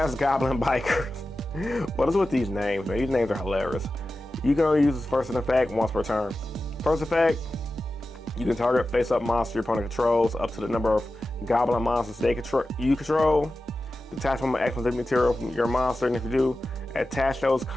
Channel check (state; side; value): normal; both; correlation 0.94